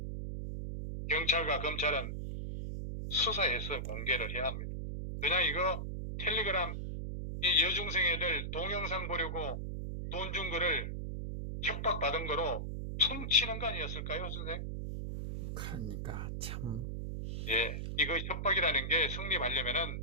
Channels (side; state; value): right; noise; hum, 4 dB below the sound